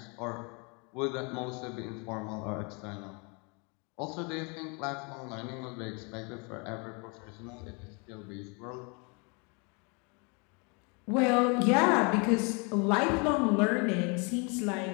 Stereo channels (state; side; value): quieter; right; 32.5 dB